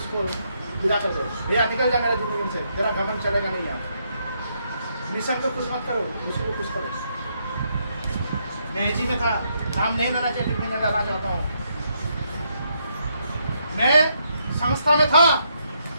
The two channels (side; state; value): both; inverted; correlation -0.76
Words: विदा कर दो, भैया निकल जा मेरे जिंदगी से, तेरा घमंड चलेगा नहीं। यहाँ मिशन को कुछ मत करो, उसको कुछ करो। मैं एजी में था, नाम नहीं लेना चाहिए, मैं लेना चाहता हूँ। मैं संस्था में था,